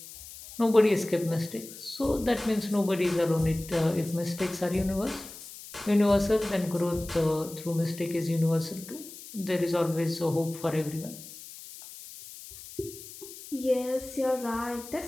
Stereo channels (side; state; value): left; noise; hiss, 15 dB below the sound